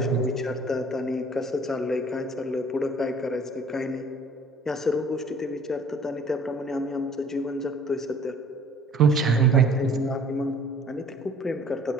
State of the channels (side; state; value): both; normal; correlation 0.53